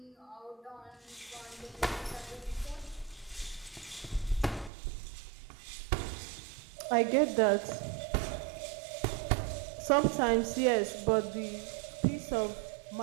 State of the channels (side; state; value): left; drops out; at 4.7 s